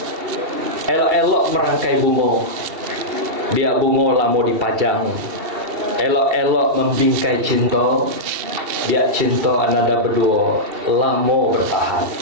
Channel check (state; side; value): late; left; 2.7 ms